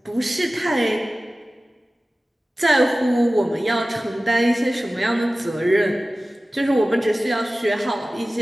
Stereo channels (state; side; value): normal; both; correlation 0.96